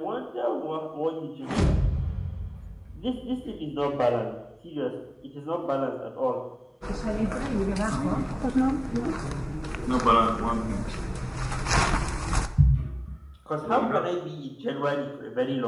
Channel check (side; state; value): both; identical; correlation 1.00